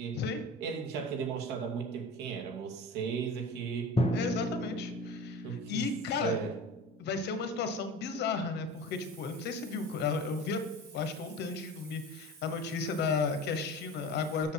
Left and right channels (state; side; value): normal; both; correlation 0.35